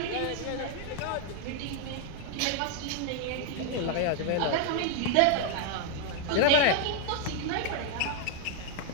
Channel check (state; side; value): different; both; correlation 0.00